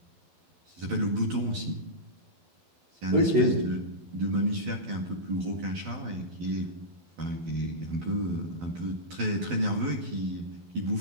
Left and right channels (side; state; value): left; late; 12 ms